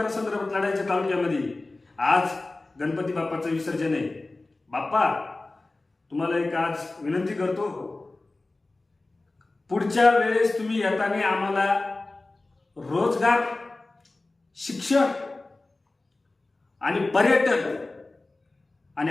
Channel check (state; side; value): quieter; right; 3.1 dB